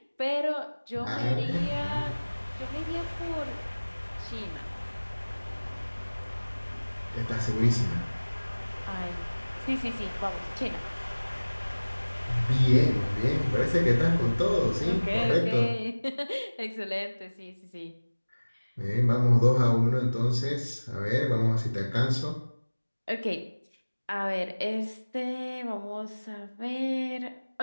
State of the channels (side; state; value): both; inverted; correlation -1.00